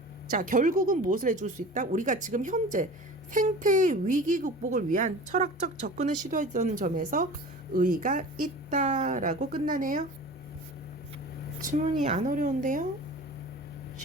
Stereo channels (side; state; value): both; normal; correlation 0.38